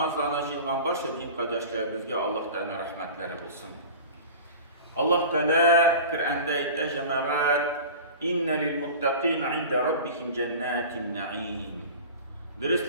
jığılan başka din kardeşlerimizge Allah Teala rahmetleri bulsun. Allah Teala Kur'an'da ayette cemaat inne lil muttaqina inde rabbihim cennetin na'im.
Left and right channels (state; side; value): inverted; both; correlation -0.37